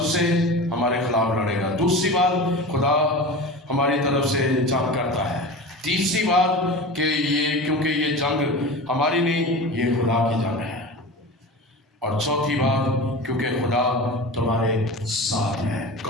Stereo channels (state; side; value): normal; both; correlation 0.31